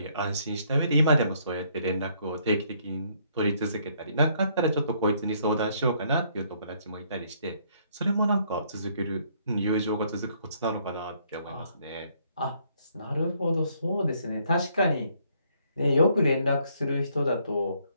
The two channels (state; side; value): inverted; both; correlation -0.67